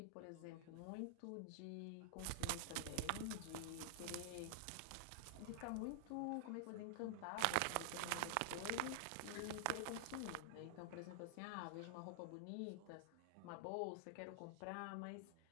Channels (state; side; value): different; both; correlation -0.01